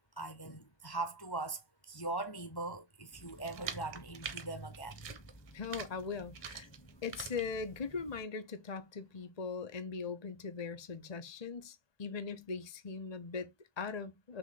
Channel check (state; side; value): late; right; 1.2 ms